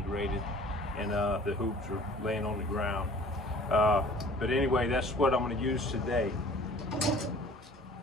and the hoops are laying on the ground. But anyway, that's what I'm going to use today.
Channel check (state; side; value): normal; both; correlation 0.49